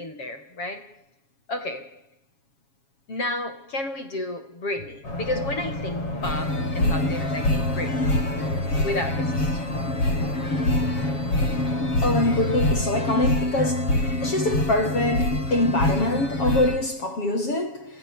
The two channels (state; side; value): late; right; 7.3 ms